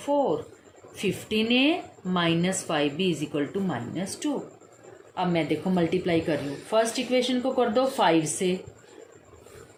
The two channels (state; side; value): identical; both; correlation 1.00